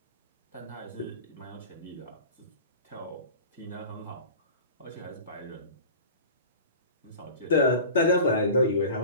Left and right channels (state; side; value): inverted; both; correlation -0.37